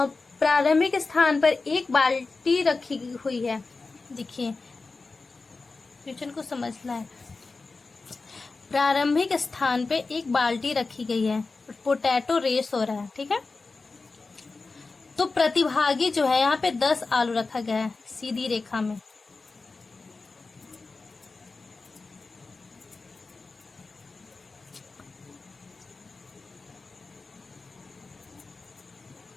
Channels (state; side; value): quieter; right; 3.9 dB